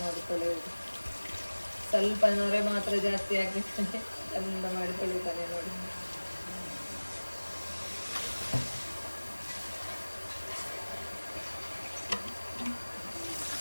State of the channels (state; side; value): inverted; both; correlation -1.00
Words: ನೋಡಿ ತೊಳೆಯೋದು. ಸ್ವಲ್ಪ ನೊರೆ ಮಾತ್ರ ಜಾಸ್ತಿ ಆಗಿರ್ತಾನೆ, ಚಂದ ಮಾಡಿ ತೊಳಿತಾನೆ ನೋಡಿ.